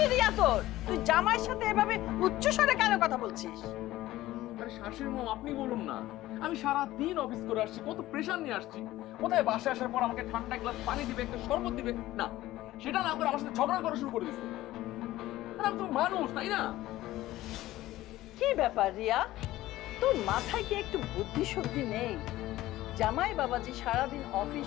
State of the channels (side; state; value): right; quieter; 16.0 dB